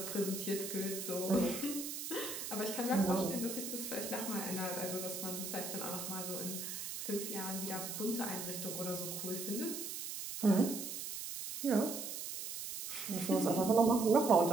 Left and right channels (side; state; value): right; noise; hiss, 6 dB below the sound